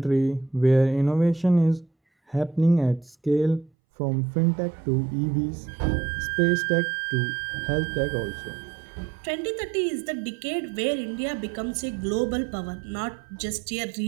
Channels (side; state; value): left; drops out; at 3.7 s